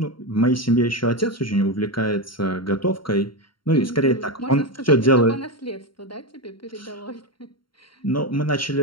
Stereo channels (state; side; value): late; right; 0.73 ms